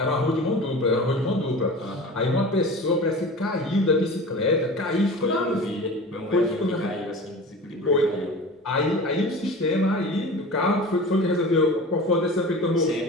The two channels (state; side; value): normal; both; correlation 0.35